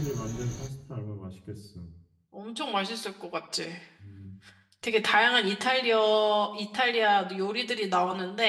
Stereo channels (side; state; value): both; identical; correlation 1.00